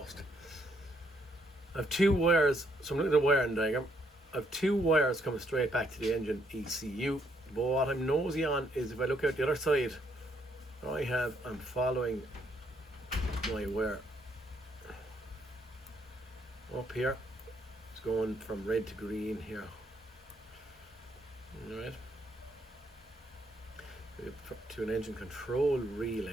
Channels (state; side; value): normal; both; correlation 0.72